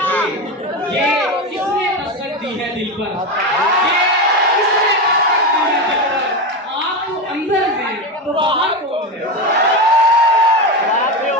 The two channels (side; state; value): both; normal; correlation 0.16